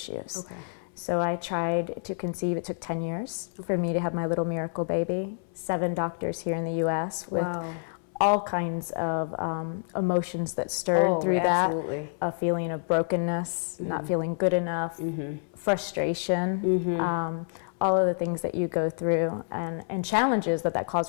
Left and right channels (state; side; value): silent; right; 59 dB below the other